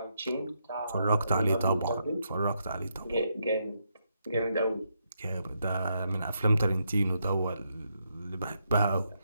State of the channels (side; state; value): both; inverted; correlation -0.80